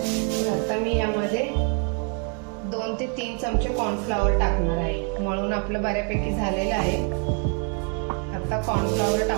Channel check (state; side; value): quieter; left; 37.5 dB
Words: तर आता मी यामध्ये 2 ते 3 चमचे कॉर्नफ्लॉवर टाकणार आहे। मळून आपलं बऱ्यापैकी झालेलं आहे। आता कॉर्नफ्लॉवर